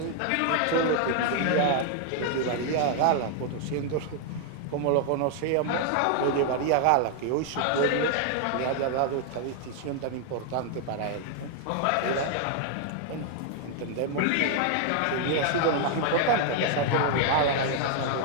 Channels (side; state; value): both; different; correlation 0.00